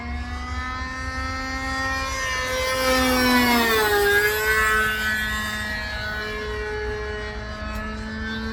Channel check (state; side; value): identical; both; correlation 1.00